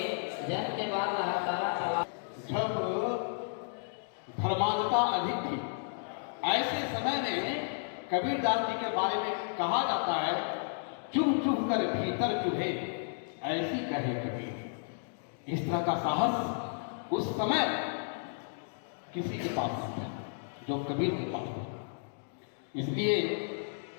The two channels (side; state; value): right; silent; digital silence